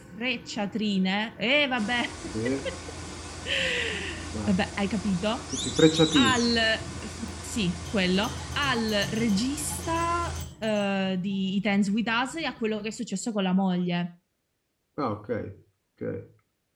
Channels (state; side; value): identical; both; correlation 1.00